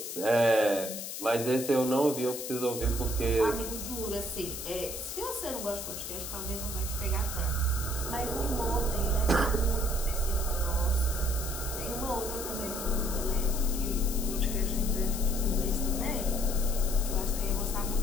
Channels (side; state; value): left; noise; hiss, 7 dB below the sound